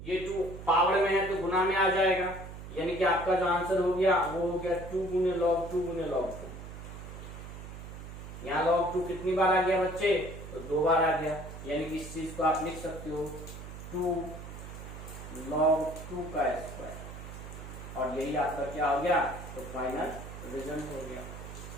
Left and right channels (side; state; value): right; noise; hum, 11 dB below the sound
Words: ये 2 पावर में है तो गुना में आ जाएगा, यानी कि आपका जो आंसर हो गया वो हो गया 2 गुने log 2 गुने log 2। यहाँ log 2 कितनी बार आ गया बच्चे, तो 2 बार आ गया, यानी कि इस चीज को आप लिख सकते हो 2 log 2 का स्क्वायर, और यही आपका क्या हो गया, तो फाइनल रिजल्ट हो गया।